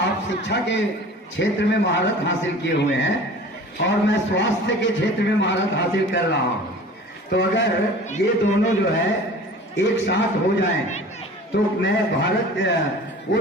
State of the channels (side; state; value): both; normal; correlation 0.42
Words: शिक्षा के क्षेत्र में महारत हासिल किए हुए हैं और मैं स्वास्थ्य के क्षेत्र में महारत हासिल कर रहा हूं, तो अगर ये दोनों जो है एक साथ हो जाएं तो मैं भारत, वो